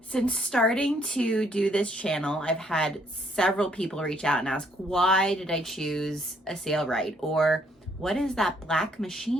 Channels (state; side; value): normal; both; correlation 0.67